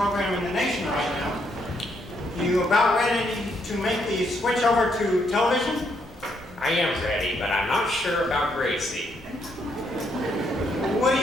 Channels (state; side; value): noise; right; rumble, 22 dB below the sound